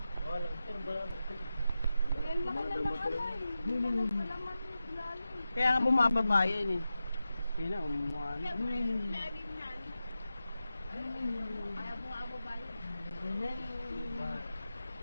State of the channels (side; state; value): both; inverted; correlation -0.92